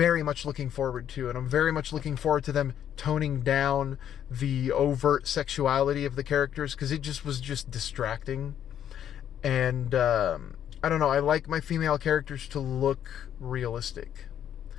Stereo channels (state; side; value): quieter; right; 9.9 dB